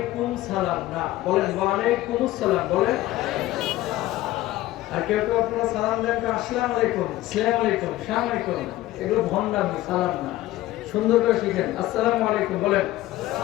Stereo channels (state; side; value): quieter; right; 16.0 dB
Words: সালাম, না, বলেন ওয়া আলাইকুমুস সালাম। বলেন। আর কেউ কেউ আপনারা সালাম দেন আসসালামু আলাইকুম, আসসালামু আলাইকুম, আসসালামু আলাইকুম। এগুলো ভণ্ডামি, সালাম না। সুন্দর করে শিখেন, আসসালামু আলাইকুম বলেন।